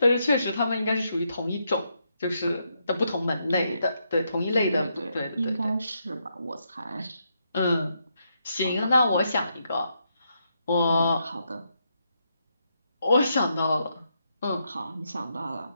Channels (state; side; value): inverted; both; correlation -0.80